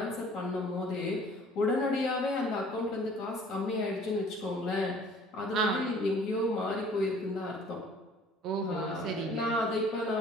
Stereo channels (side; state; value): both; normal; correlation 0.53